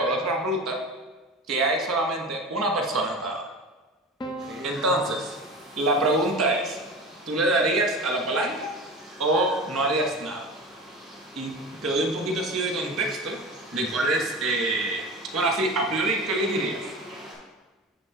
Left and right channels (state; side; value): normal; both; correlation 0.31